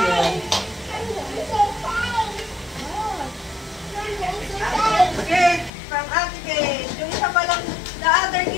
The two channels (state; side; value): drops out; right; at 5.7 s